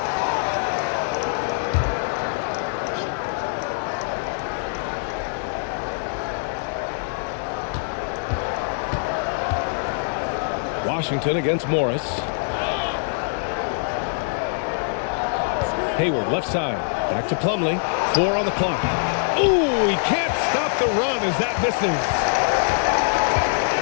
Washington against Morris. Hayward left side. Back to Plumlee. 4 on the clock. Ooh, he can't stop the run as that misses.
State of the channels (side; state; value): right; silent; 63 dB below the other